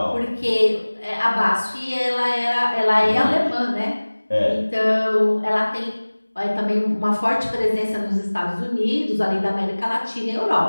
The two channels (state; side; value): inverted; both; correlation -1.00